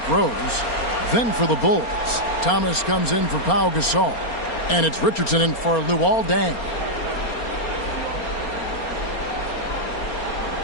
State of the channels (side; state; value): right; late; 4.3 ms